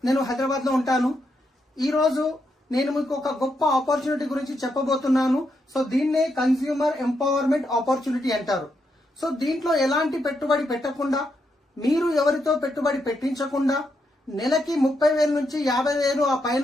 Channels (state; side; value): normal; both; correlation 0.81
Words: నేను హైదరాబాద్ లో ఉంటాను. ఈ రోజు నేను మీకు ఒక గొప్ప ఆపర్చునిటీ గురించి చెప్పబోతున్నాను. సో దీన్నే కన్స్యూమర్ ఎంపవర్మెంట్ ఆపర్చునిటీ అంటారు. సో దీంట్లో ఎలాంటి పెట్టుబడి పెట్టకుండా, మీరు ఎవరితో పెట్టుబడి పెట్టించకుండా నెలకి 30,000 నుంచి 50,000 ఆ